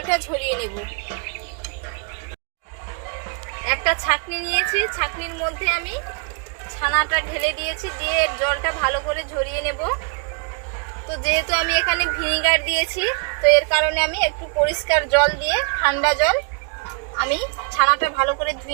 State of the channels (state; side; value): quieter; left; 37.4 dB